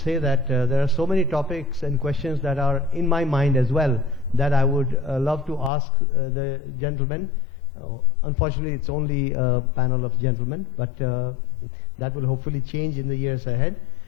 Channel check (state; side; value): drops out; right; at 5.7 s